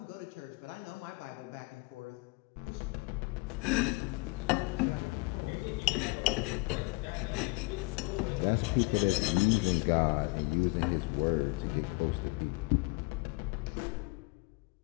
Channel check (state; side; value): quieter; right; 27.6 dB